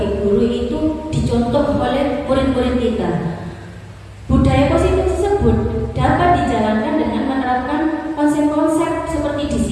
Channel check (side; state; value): both; identical; correlation 1.00